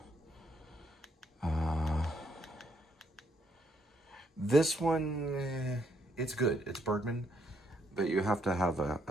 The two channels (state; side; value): normal; both; correlation 0.73